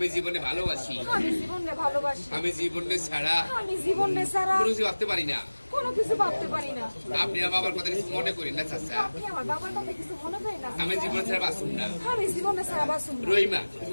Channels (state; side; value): inverted; both; correlation -1.00